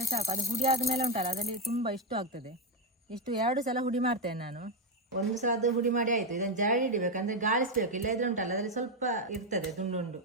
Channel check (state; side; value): normal; both; correlation 0.06